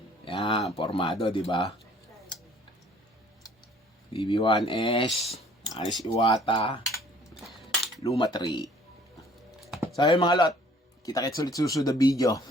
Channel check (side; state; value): both; normal; correlation 0.56